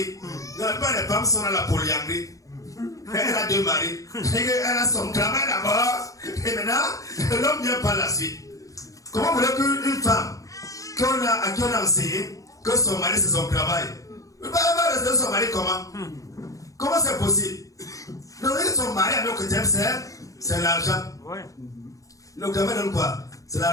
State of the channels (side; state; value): right; late; 0.16 ms